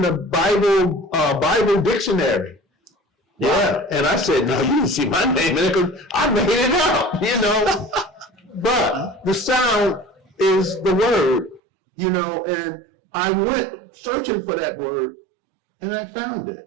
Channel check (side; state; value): left; drops out; at 11.6 s